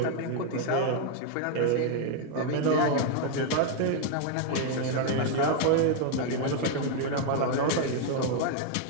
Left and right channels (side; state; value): both; different; correlation 0.00